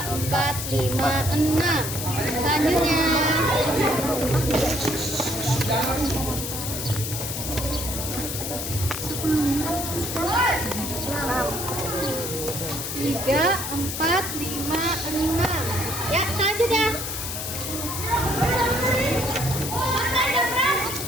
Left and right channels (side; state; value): left; noise; hiss, 5 dB below the sound